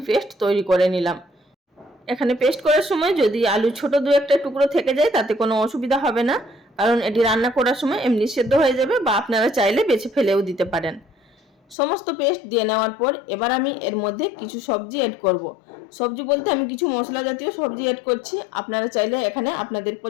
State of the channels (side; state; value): right; drops out; at 11.8 s